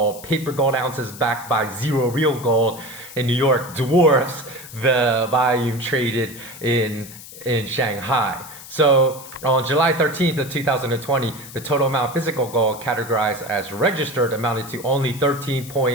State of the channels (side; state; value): left; noise; hiss, 16 dB below the sound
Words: paper gold ounces backed by zero real gold in New York, dwarfs the volume traded in Shanghai. So on July 13th of 2020, the total amount of physical gold categorized as registered amounted to only